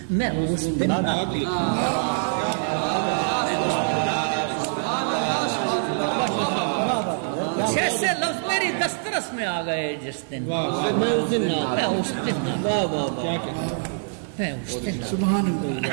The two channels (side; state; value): left; silent; 62 dB below the other